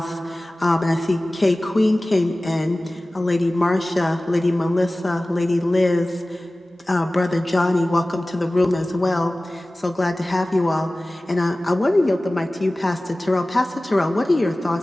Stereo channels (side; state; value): both; normal; correlation 0.97